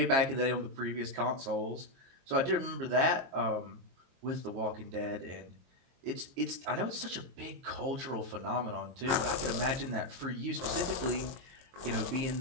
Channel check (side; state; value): left; late; 23 ms